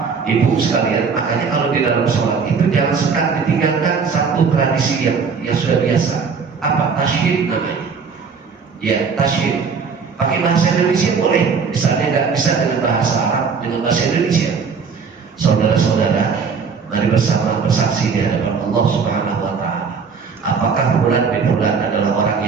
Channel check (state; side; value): quieter; left; 5.6 dB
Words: Ibu sekalian? Makanya kalau di dalam sholat itu jangan suka ditinggalkan satu tradisi yang sudah biasa. Apa? Tasyid namanya. Ya, tasyid. Pakai bahasa Indonesia boleh, misalnya nggak bisa dengan bahasa Arab, dengan bahasa Indonesia. Saudara-saudara, mari bersama bersaksi di hadapan Allah Subhanahu wa Ta'ala. Apakah fulan bin fulan adalah orang